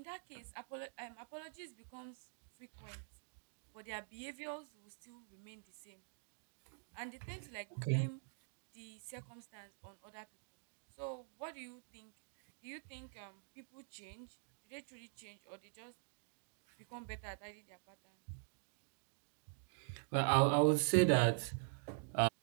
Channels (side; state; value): left; silent; digital silence